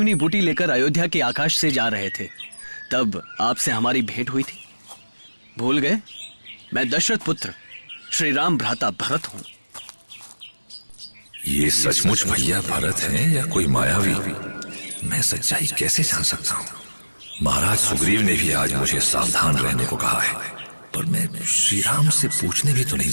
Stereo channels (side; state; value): both; inverted; correlation -1.00